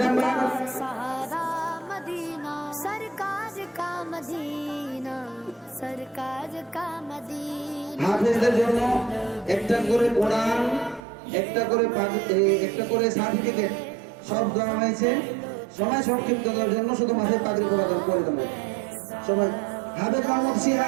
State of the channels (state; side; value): drops out; left; at 11.0 s